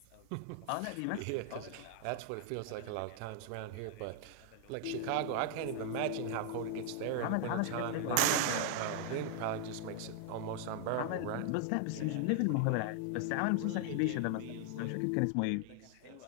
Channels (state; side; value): different; both; correlation 0.00